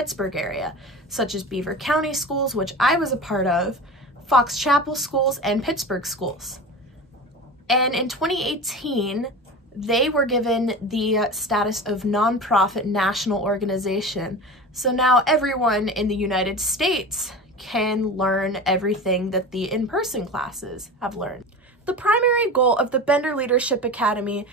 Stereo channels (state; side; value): normal; both; correlation 0.31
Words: area, such as Beaver County schools, which I was a part of, Fox Chapel schools, and Pittsburgh schools. And in 2018, they were given the status of nonprofit national organization. So now everyone in the United States can learn everything that the in-person classes have learned. The primary goal of the Bender Leadership Academy